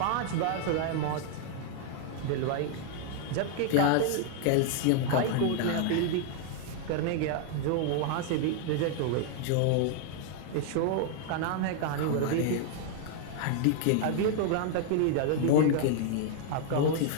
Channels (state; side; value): different; both; correlation 0.00